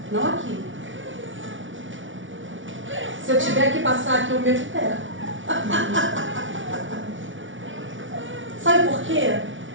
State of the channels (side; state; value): left; late; 0.56 ms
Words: Não aqui. Se eu tiver que passar aqui, eu meto o pé. Sabe por quê?